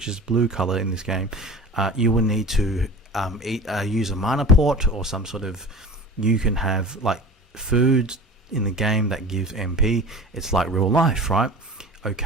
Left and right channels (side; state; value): both; normal; correlation 0.38